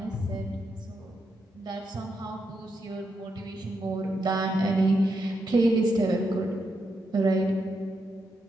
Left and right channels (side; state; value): both; normal; correlation 0.83